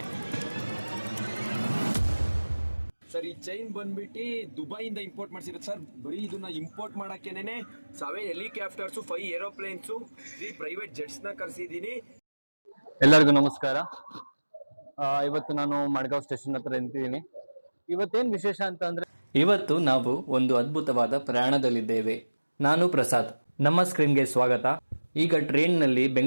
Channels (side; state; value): both; inverted; correlation -1.00